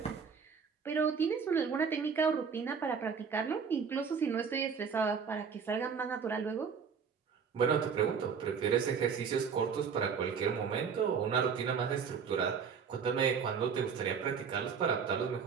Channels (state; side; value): quieter; left; 6.3 dB